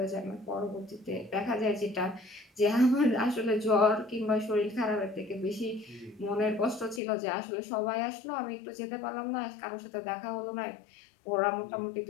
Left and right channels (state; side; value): drops out; right; at 7.0 s